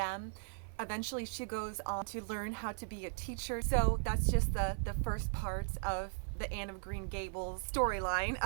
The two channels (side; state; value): left; silent; 53 dB below the other